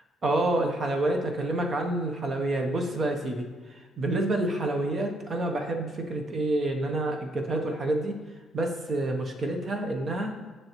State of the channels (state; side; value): normal; both; correlation 0.72